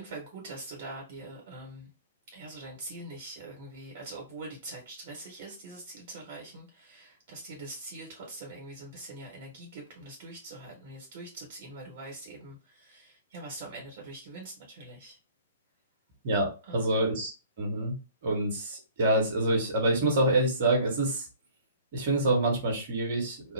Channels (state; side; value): inverted; both; correlation -0.53